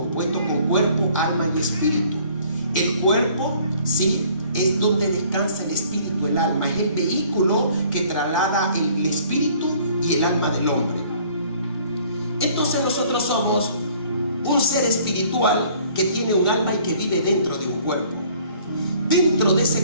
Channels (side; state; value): both; inverted; correlation -0.56